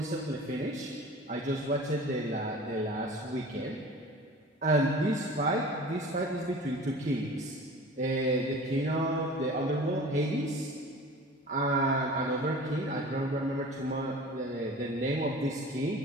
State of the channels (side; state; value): both; normal; correlation 0.40